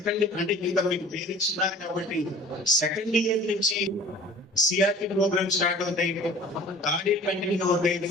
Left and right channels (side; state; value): both; normal; correlation 0.46